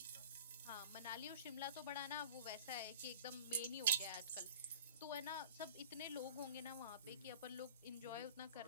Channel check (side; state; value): both; inverted; correlation -0.39